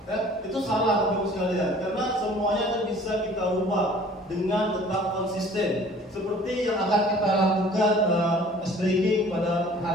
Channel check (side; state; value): both; normal; correlation 0.50